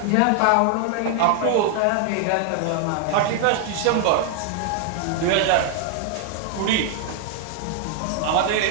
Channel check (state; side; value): different; both; correlation 0.00